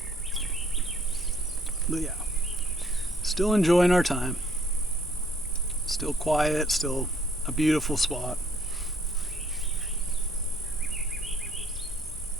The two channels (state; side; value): normal; both; correlation 0.63